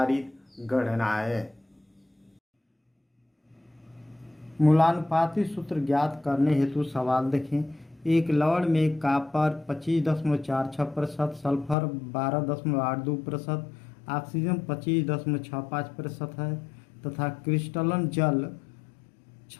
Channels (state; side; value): drops out; right; at 11.8 s